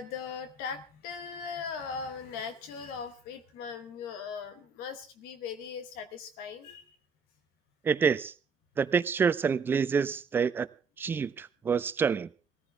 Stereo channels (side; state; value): left; quieter; 4.5 dB